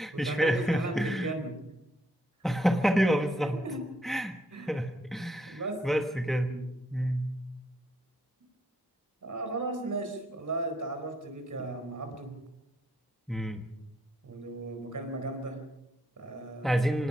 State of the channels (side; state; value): both; normal; correlation 0.74